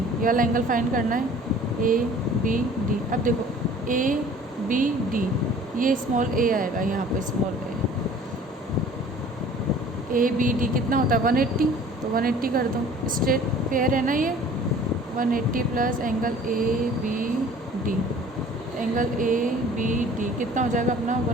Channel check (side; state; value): both; normal; correlation 0.49